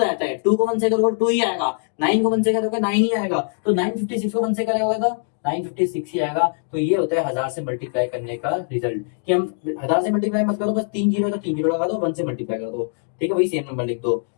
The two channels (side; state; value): right; silent; digital silence